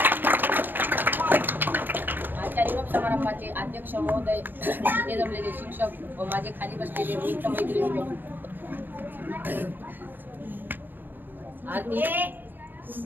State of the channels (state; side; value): late; left; 0.093 ms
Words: आजच्या निरोप समारंभाचे अध्यक्ष महोदय, इथे जमलेले शिक्षक व माझे खाली बसलेले मित्र मैत्रिणी, आरती